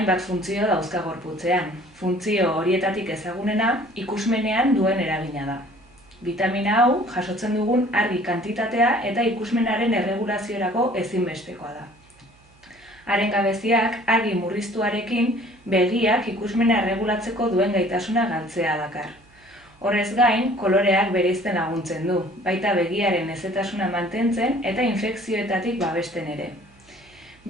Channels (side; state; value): right; noise; hum, 30 dB below the sound